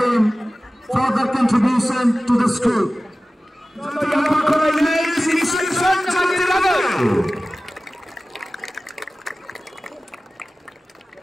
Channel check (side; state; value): both; normal; correlation 0.97